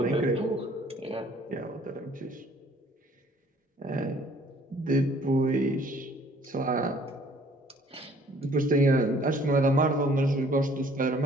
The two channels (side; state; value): both; normal; correlation 0.57